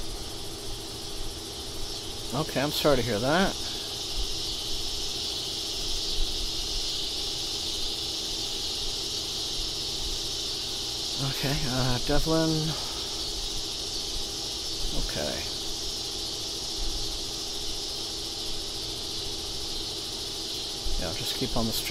Okay, I'm sorry to hear that. Okay, Devlin. Okay. Yeah, just keep on the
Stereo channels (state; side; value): identical; both; correlation 1.00